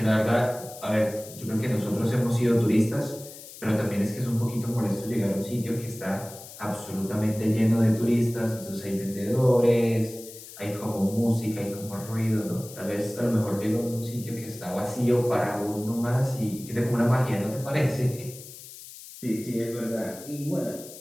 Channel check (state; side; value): noise; left; hiss, 16 dB below the sound